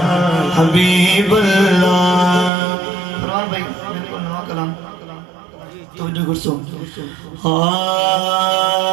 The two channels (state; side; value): drops out; left; at 2.5 s